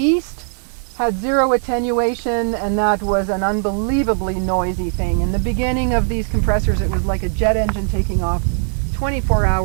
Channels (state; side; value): silent; left; digital silence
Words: Had zero attenuation, and that was an unbelievably noisy thing. In the beginning of these compressors, it was like a jet engine taking off 24